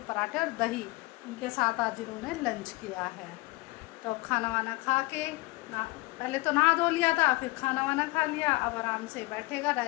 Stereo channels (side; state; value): right; quieter; 22.5 dB